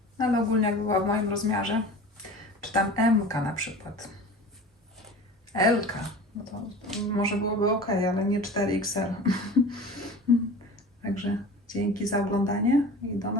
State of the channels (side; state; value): both; normal; correlation 0.38